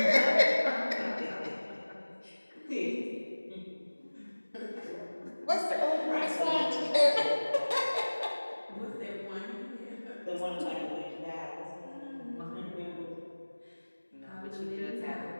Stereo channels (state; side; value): inverted; both; correlation -1.00